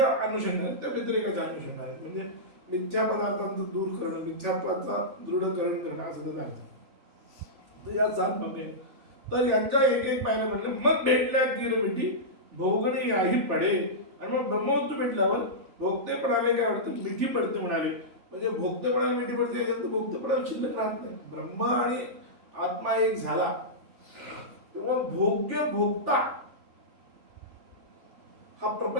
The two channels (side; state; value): left; late; 3.4 ms